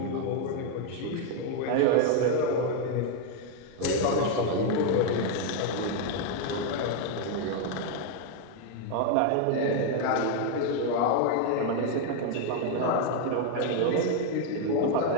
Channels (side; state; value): both; different; correlation 0.01